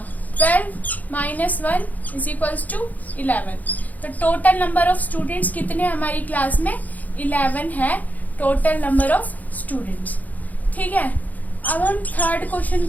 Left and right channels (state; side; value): late; right; 0.079 ms